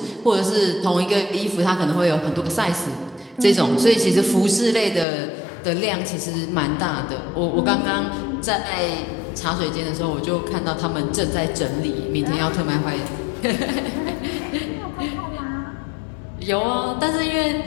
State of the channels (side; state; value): right; drops out; at 5.1 s